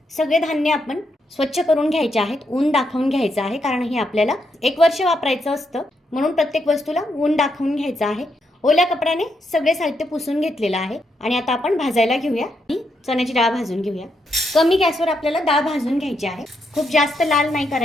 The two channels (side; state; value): both; normal; correlation 0.80